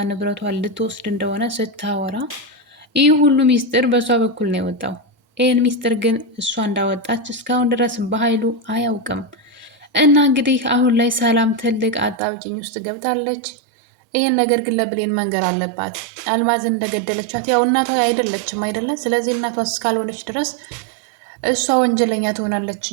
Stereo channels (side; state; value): left; drops out; at 12.2 s